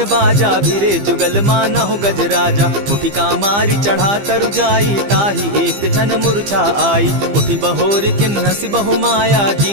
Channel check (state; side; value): late; left; 15 ms